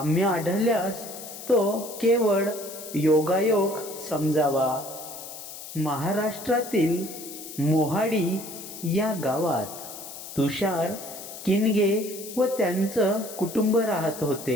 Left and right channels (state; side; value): noise; left; hiss, 12 dB below the sound